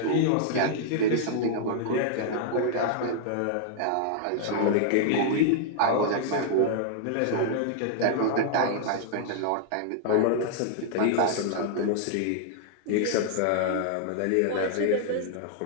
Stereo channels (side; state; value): both; different; correlation -0.01